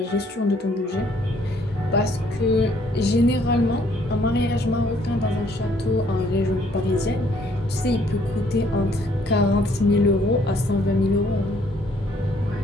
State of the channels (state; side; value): normal; both; correlation 0.64